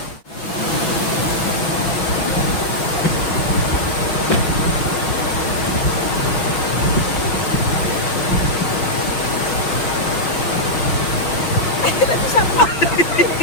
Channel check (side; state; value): right; late; 6.0 ms